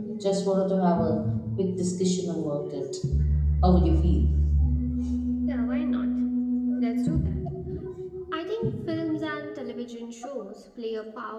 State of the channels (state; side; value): identical; both; correlation 1.00